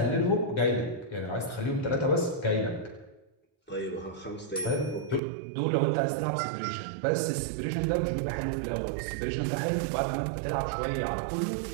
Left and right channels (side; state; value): left; drops out; at 5.2 s